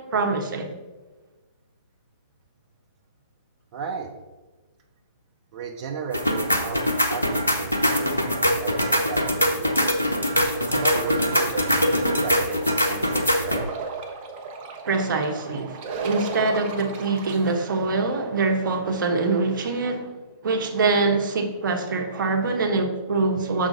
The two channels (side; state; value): both; inverted; correlation -0.59